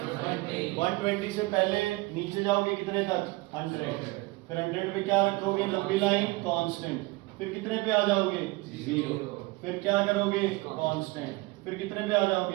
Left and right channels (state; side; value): quieter; left; 22.6 dB